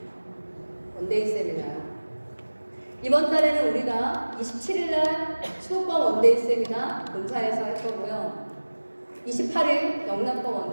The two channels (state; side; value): inverted; both; correlation -1.00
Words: 원데이 세미나. 이번 달에는 우리가 27일날 수도권 원데이 세미나 본사에서 할 거고요. 28일 영남권